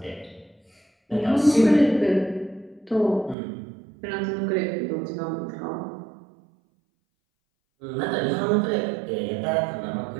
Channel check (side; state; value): left; drops out; at 3.4 s